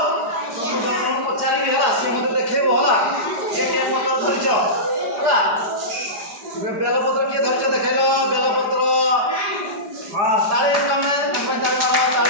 ତମକୁ ଜଣ ଜଣ ପଚାରିବି ହେଲା। ସିଏ ମୋତେ ଦେଖେଇବ ହେଲା। କିଏ କିଏ ପତ୍ର ଧରିଛ ହେଲା। ବେଲପତ୍ର କିଏ ଧରିଛ ଦେଖେଇଲ? ବେଲପତ୍ର। ହଁ ତାଳି ତମେ ତାଳି ମାର,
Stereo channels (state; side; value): late; left; 4.9 ms